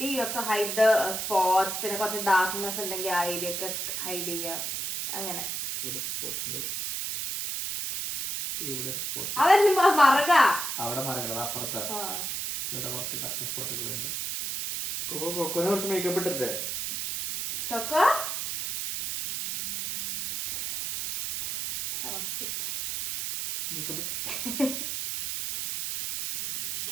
you have to hide the spots, പിന്നെ കുറച്ച് ഡാർക്ക്നെസ് ഉണ്ടെങ്കിൽ ആ ഏരിയ ഒക്കെ ഹൈഡ് ചെയ്യുക അങ്ങനെ. ഇവിടെ സ്പോട്ട് ഉണ്ട്, ഇവിടെ സ്പോട്ട്. അതെന്നെ മറക അവിടെ മറങ്ങണത് അപ്പുറത്താ. ഇവിടെ കുറച്ച് കറുത്ത സ്പോട്ടുകളുണ്ട്. കൊക്കോനെ കുറച്ച് മേക്കപ്പ് ഇട്ടിട്ടേ. കൊക്കോ മേക്കപ്പ്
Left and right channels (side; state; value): right; noise; hiss, 3 dB below the sound